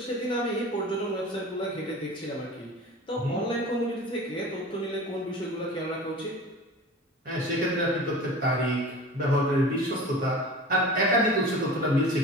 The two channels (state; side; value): normal; both; correlation 0.37